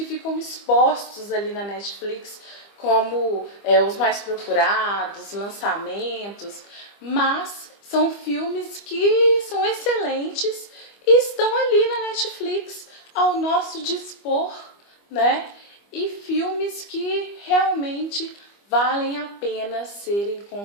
ficam expostos ali na Netflix como os mais procurados, lançamentos, mas são filmes que são excelentes e estão ali na Netflix ao nosso dispor, né? E filmes que realmente valem a pena serem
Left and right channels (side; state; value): right; late; 25 ms